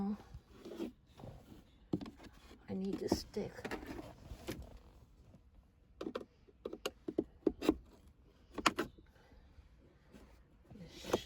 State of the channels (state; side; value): identical; both; correlation 1.00